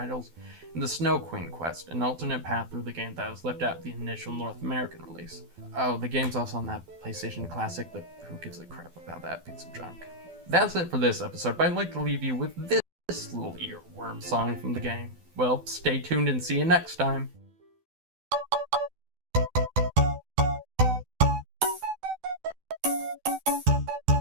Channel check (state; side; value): late; left; 12 ms